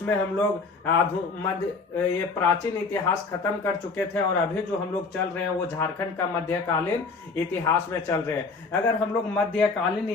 हम लोग ये प्राचीन इतिहास खत्म कर चुके थे और अभी जो हम लोग चल रहे हैं वो झारखंड का मध्यकालीन इतिहास में चल रहे हैं। अगर हम लोग मध्यकालीन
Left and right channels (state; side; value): quieter; right; 4.3 dB